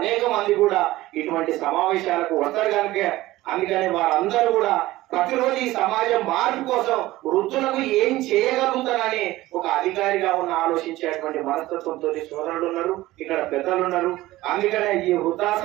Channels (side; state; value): left; quieter; 17.3 dB